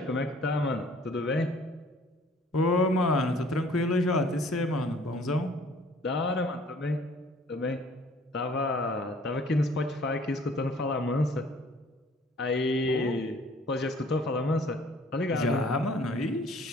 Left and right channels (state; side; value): normal; both; correlation 0.55